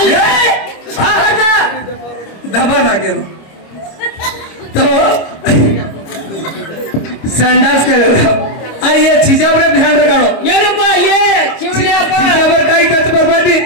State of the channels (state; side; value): late; right; 26 ms